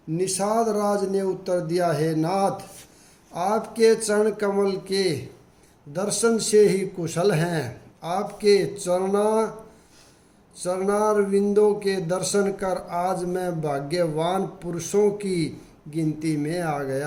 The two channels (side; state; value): both; identical; correlation 1.00